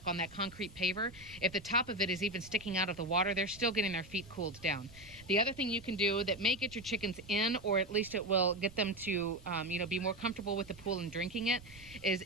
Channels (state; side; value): noise; right; rumble, 19 dB below the sound